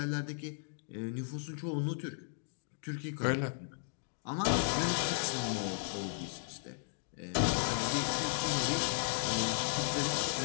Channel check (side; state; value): right; silent; digital silence